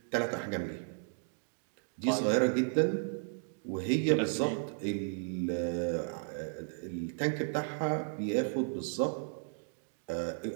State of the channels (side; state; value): left; silent; digital silence